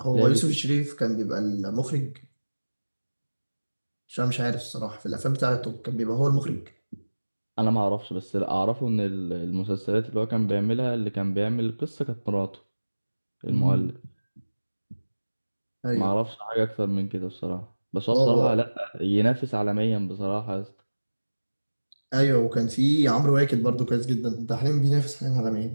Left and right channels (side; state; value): both; inverted; correlation -1.00